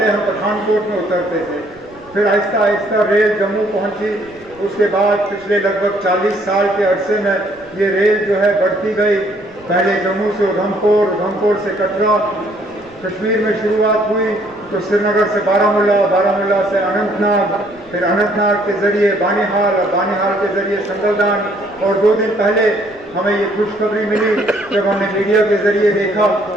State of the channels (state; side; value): noise; right; rumble, 28 dB below the sound